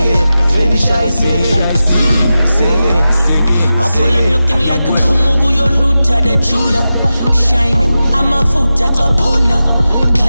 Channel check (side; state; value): both; inverted; correlation -0.93